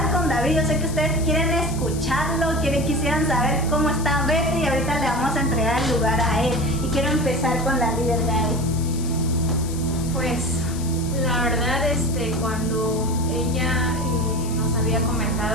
con David. Yo sé que ustedes quieren escucharlo, quisieran saber cómo está Betty, y ahorita le vamos a entregar el lugar a él. Y quiero empezar con la líder Gaby. Pues la verdad, cuando ella nos había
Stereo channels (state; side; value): noise; left; hiss, 13 dB below the sound